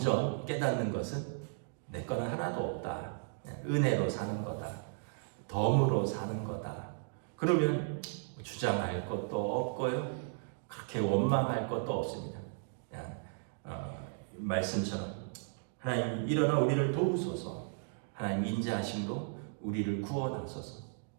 깨닫는 것은 내 거는 하나도 없다. 은혜로 사는 거다. 덤으로 사는 거다. 그러면 주장할 것도 없고요. 그렇게 원망할 것도 없습니다. 그냥 말씀처럼 하나님 일어나 우리를 도우소서. 하나님 인자하심으로 우리를 구원하소서.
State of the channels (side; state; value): left; silent; digital silence